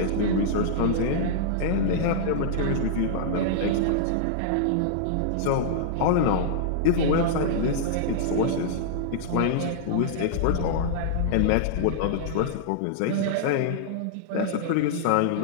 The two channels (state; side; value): different; both; correlation -0.01